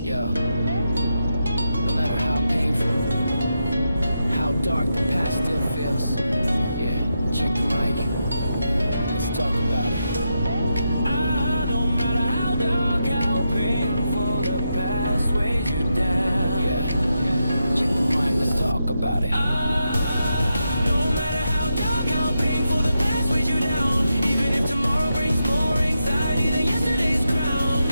Yo, no matter how painful, how dark the past still feels. Yeah, check the mic. Let's talk about it. No matter how dark, how painful, the past weighs you down. Yeah, check the mic. Let's talk about it. No matter how dark, how painful, the past weighs you down. Even if tomorrow brings more anxiety than yesterday's crown.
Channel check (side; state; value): both; inverted; correlation -0.86